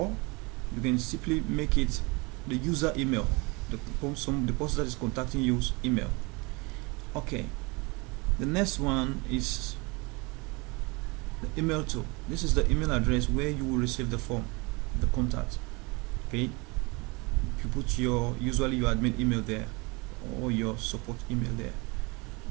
you can simply make it the user email, the person that is contacting you's email. Okay, the next one is the email to. This is the email address where you will receive the form, the contact. Okay, you put usually your admin email there, or your support email there.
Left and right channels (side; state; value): left; quieter; 27.3 dB